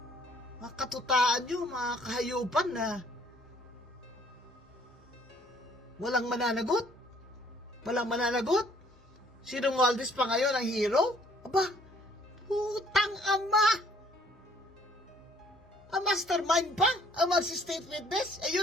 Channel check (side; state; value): both; normal; correlation 0.61